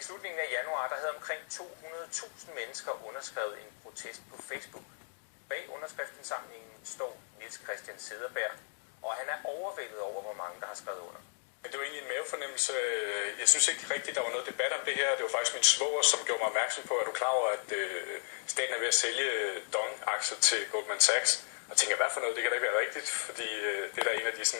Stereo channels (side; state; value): right; silent; digital silence